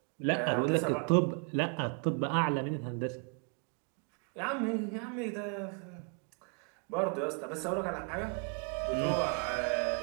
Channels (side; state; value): left; quieter; 39.6 dB